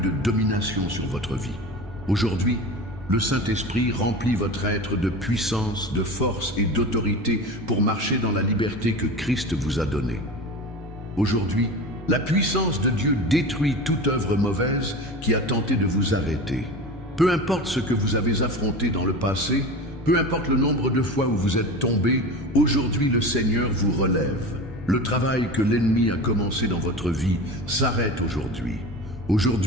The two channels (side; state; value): both; normal; correlation 0.31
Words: domination sur votre vie. Aujourd'hui, le Saint-Esprit remplit votre être de puissance, de force et d'autorité pour marcher dans la liberté que Christ vous a donnée. Aujourd'hui, la puissance de Dieu détruit toute œuvre mauvaise qui a tenté de vous arrêter. Peu importe ce que vous avez affronté dans le passé, peu importe le nombre de fois où vous êtes tombé, aujourd'hui le Seigneur vous relève. Le travail que l'ennemi a commencé dans votre vie s'arrête aujourd'hui.